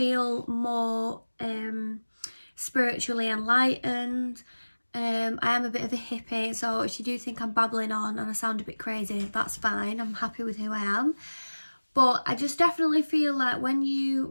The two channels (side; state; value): both; inverted; correlation -1.00